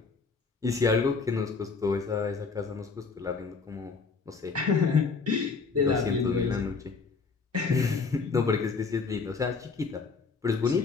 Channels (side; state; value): right; quieter; 4.7 dB